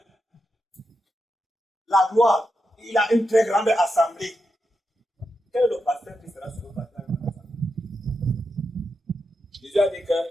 La gloire, il a une très grande assemblée. Quel est le pasteur qui sera sur le pasteur? Jésus a dit que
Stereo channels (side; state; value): both; normal; correlation 0.86